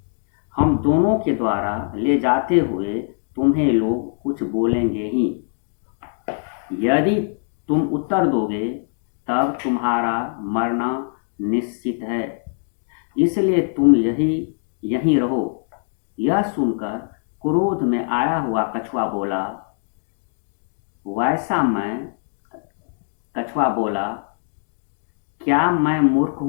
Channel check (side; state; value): right; silent; digital silence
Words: हम दोनों के द्वारा ले जाते हुए तुम्हें लोग कुछ बोलेंगे ही। यदि तुम उत्तर दोगे तब तुम्हारा मरना निश्चित है, इसलिए तुम यहीं रहो। यह सुनकर क्रोध में आया हुआ कछुआ बोला, क्या मैं मूर्ख